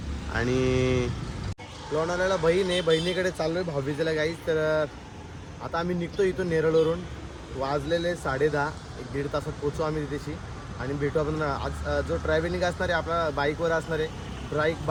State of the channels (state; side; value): identical; both; correlation 1.00